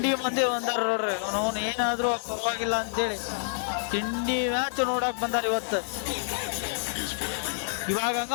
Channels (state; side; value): silent; right; digital silence